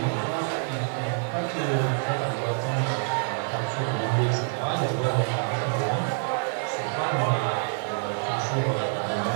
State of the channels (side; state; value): left; silent; 58 dB below the other